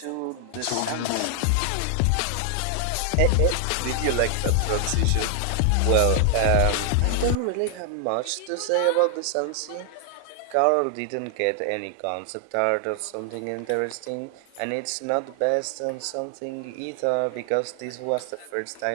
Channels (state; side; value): different; both; correlation 0.00